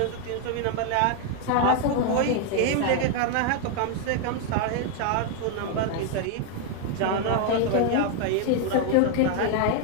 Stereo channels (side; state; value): both; different; correlation 0.00